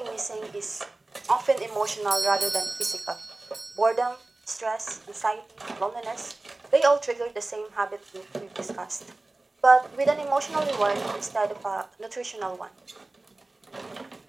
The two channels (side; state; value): left; quieter; 3.0 dB